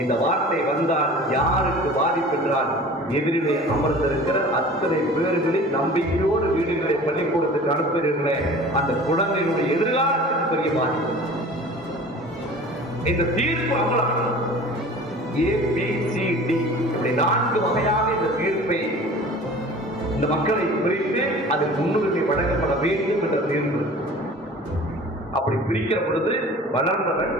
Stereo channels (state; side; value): normal; both; correlation 0.42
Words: இந்த வார்த்தை வந்தால் யாருக்கு பாதிப்பு என்றால், எதிரிலே அமர்ந்திருக்கிற அத்தனை பேர்களின் நம்பிக்கையோடு வீடுகளை பள்ளிக்கூடத்துக்கு அனுப்புகிறீர்களே, அந்த குழந்தைகளுடைய எதிர்காலத்துக்கு பெரிய பாதிப்பு. இந்த தீர்ப்பு அமலாம் ABCD இப்படி 4 வகையாக இந்த தீர்ப்பை இந்த மக்களை பிரித்து அதில் முன்னுரிமை வழங்கப்பட வேண்டும் என்ற தீர்ப்பு. அப்படி பிரிக்கிற பொழுது வளர்ந்தவன்,